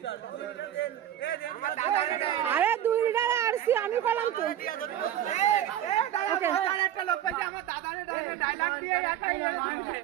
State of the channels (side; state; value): left; quieter; 11.2 dB